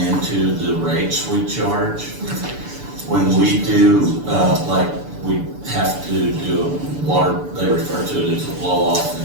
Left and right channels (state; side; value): late; left; 6.9 ms